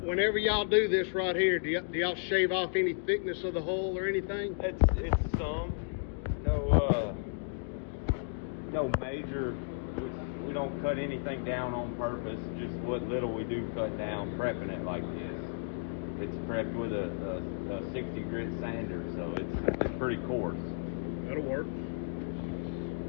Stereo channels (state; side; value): silent; right; digital silence